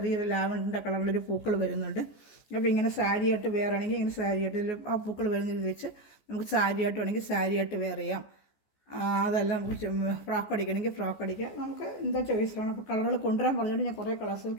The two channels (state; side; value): late; right; 14 ms